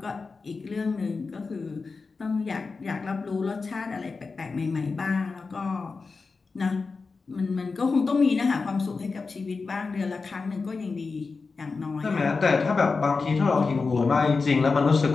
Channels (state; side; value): quieter; right; 4.4 dB